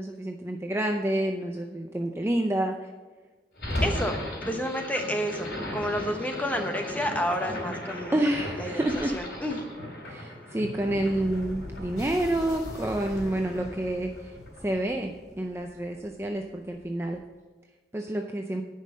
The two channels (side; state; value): both; normal; correlation 0.78